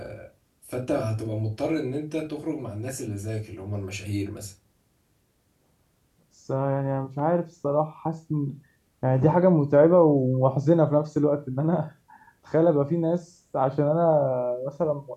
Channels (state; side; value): identical; both; correlation 1.00